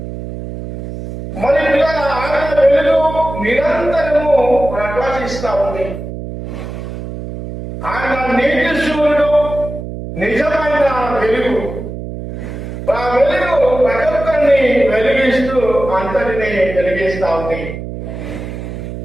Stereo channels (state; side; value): noise; right; hum, 8 dB below the sound